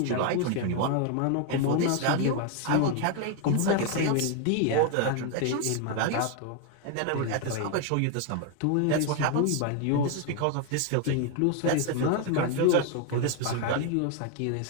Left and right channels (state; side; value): different; both; correlation 0.01